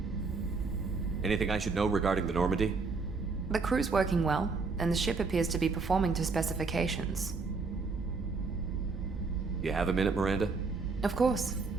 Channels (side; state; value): left; quieter; 4.3 dB